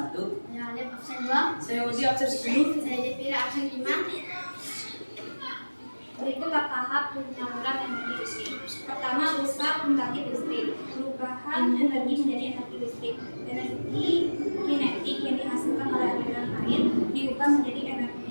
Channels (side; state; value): both; inverted; correlation -1.00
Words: saya Alif absen 2, Saya Udi absen 10. saya Jepira absen 5. Berikutlah tahap penyaluran energi listrik. Pertama, rusak pembangkit listrik. Perubahan energi menjadi energi listrik. Energi kinetik yang dihasilkan oleh aliran air diubah menjadi